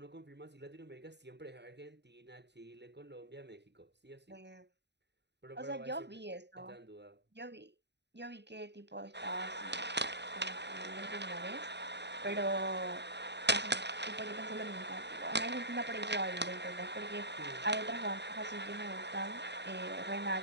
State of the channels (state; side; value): late; left; 0.50 ms